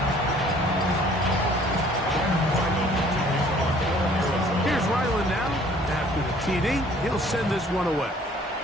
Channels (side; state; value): both; normal; correlation 0.56